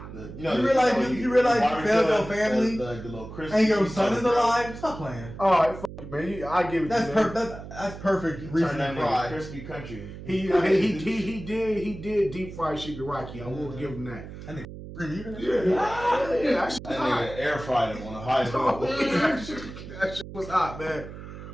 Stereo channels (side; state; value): right; noise; hum, 12 dB below the sound